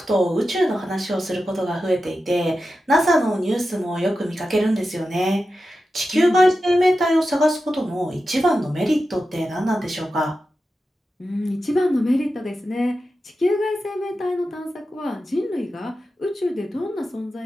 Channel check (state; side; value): normal; both; correlation 0.91